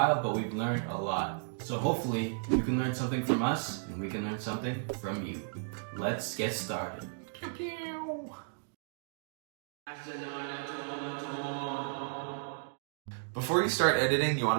but we've learned a lot. So hopefully you can learn something from us and we can learn something from you. Let's get started. Pew pew. Before you start editing, you want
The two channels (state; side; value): silent; left; digital silence